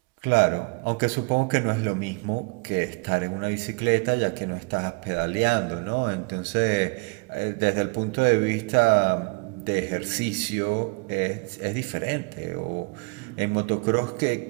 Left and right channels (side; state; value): left; quieter; 30.6 dB